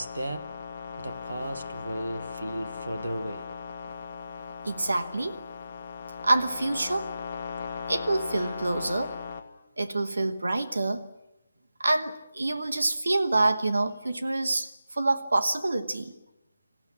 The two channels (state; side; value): inverted; both; correlation -0.93